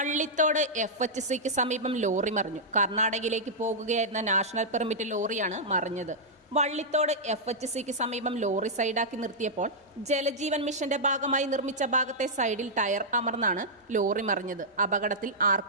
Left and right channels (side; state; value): both; normal; correlation -0.09